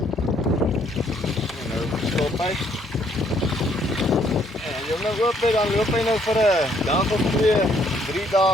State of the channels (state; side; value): normal; both; correlation 0.67